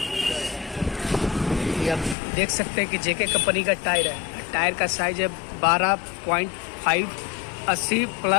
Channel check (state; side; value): drops out; right; at 2.1 s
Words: ये आप देख सकते हैं कि जेके कंपनी का टायर है। टायर का साइज है 12.5 80